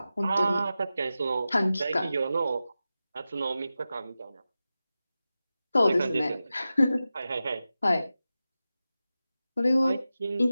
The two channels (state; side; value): inverted; both; correlation -0.93